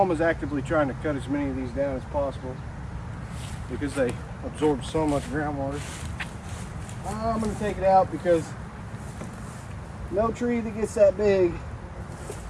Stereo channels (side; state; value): both; identical; correlation 1.00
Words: actively trying to cut as many of these down as possible because they absorb so much groundwater. I'm going to take it out because no tree that gets that big